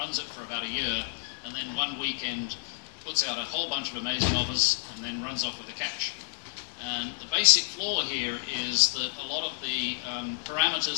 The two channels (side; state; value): right; silent; 58 dB below the other